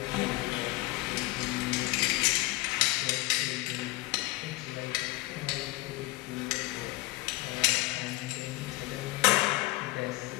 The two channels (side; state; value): right; quieter; 20.4 dB